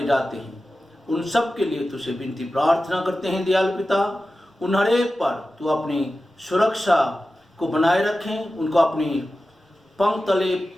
जाते हैं, उन सब के लिए तुझसे विनती प्रार्थना करते हैं दयालु पिता। उन हर एक पर तू अपनी सुरक्षा को बनाए रखें, उनको अपनी पंख तले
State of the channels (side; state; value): both; normal; correlation 0.94